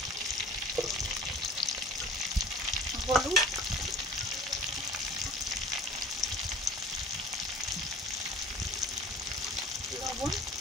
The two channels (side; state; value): both; normal; correlation 0.45